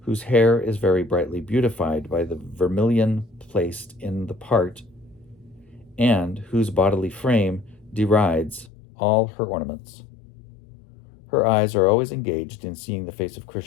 whose hair is very brightly beautified by the vermilion placed in the part, and whose bodily frame derides all her ornaments. Her eyes are always engaged in seeing the face of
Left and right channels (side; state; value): right; drops out; at 8.7 s